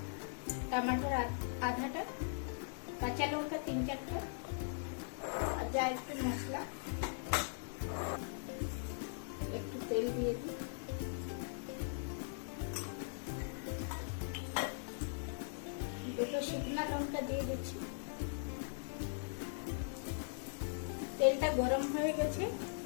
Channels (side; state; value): right; silent; digital silence